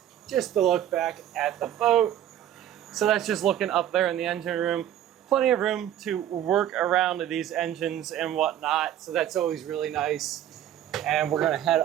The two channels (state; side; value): quieter; left; 11.2 dB